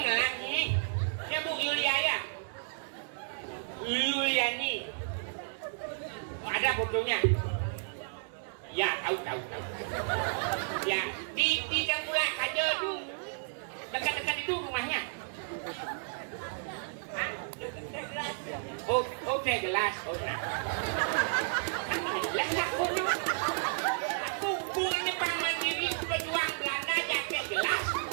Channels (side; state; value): left; silent; digital silence